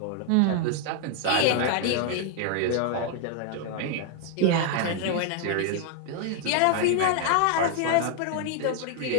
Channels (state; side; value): different; both; correlation 0.00